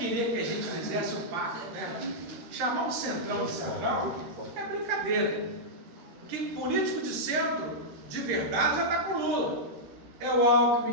que a gente fizesse um pacto, né? Chamar um centrão de central é brincadeira. Porque político de centro, de verdade, já está com o Lula. É o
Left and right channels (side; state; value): left; late; 13 ms